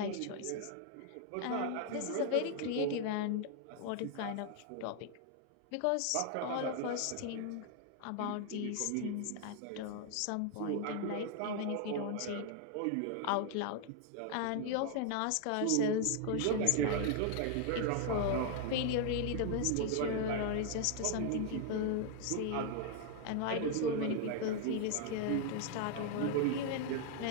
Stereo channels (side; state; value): both; different; correlation 0.00